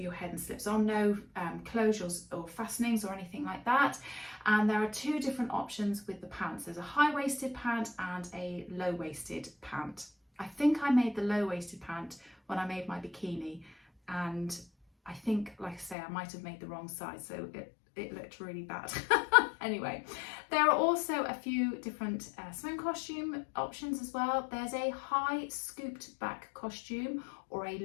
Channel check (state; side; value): drops out; right; at 16.0 s